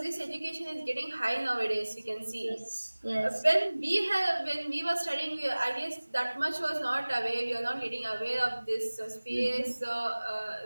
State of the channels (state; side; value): inverted; both; correlation -1.00